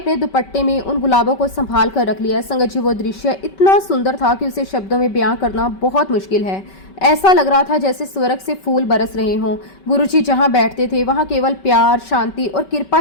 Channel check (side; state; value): right; late; 5.2 ms